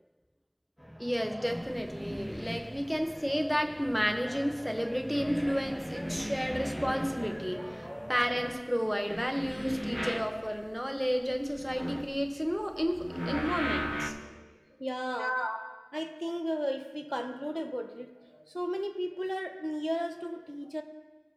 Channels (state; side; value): identical; both; correlation 1.00